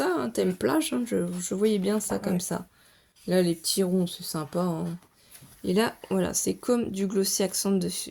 un thème plage, hein. Je voyais bien ça comme Ouais. ça. Là, les petits ronds, c'est sympa, hein. Et là, voilà, c'est comme du glossy accent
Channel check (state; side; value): identical; both; correlation 1.00